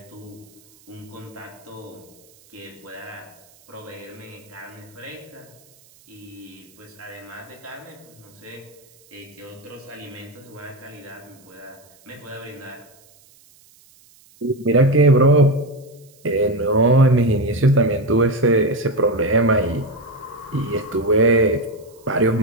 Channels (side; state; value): right; noise; hiss, 28 dB below the sound